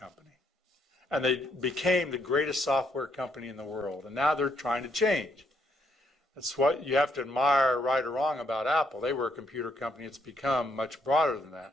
And they became the greatest software company in the world. And now they're trying to change. That's what you have to admire, right or wrong, about Apple. They were a computer company. It's become much broader than that.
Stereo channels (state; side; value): normal; both; correlation 0.73